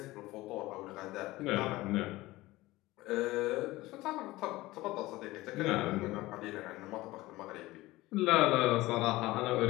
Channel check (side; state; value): right; quieter; 18.8 dB